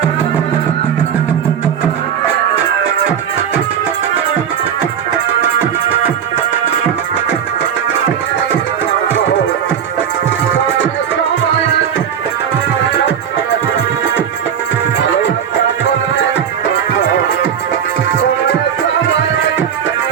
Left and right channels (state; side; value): quieter; left; 8.4 dB